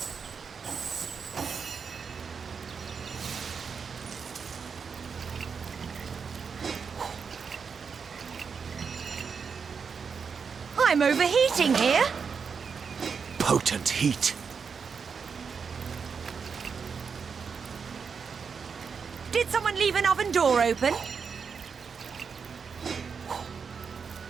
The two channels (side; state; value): left; quieter; 5.9 dB